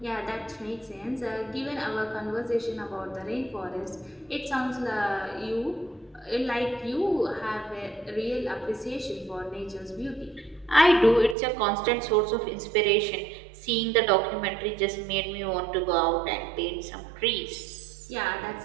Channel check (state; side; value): drops out; left; at 11.4 s